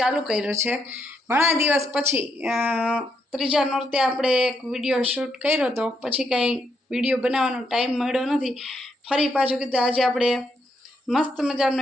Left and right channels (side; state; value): both; normal; correlation 0.78